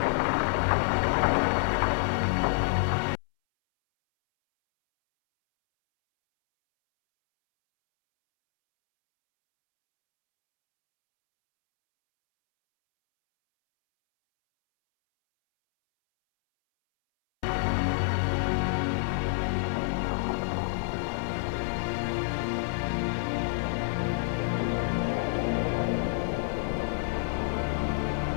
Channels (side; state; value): right; silent; 59 dB below the other